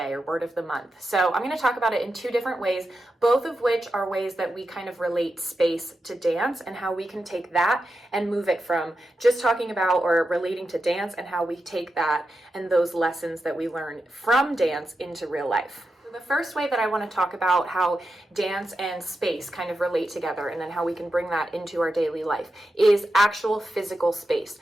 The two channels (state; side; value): normal; both; correlation 0.89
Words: or word of the month. So I'm going to talk about it in two different ways, both of which are ways that we kind of relate space to dance and how we can take that and move it from just talking about or relating to dance and how we take that and those lessons that we learn from dance into real life. So the first way that I want to talk about how dance and space kind of relate together and then how we can bring that into our daily life is actual physical space.